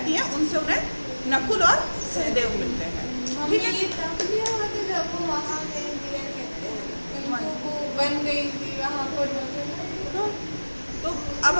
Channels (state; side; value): inverted; both; correlation -1.00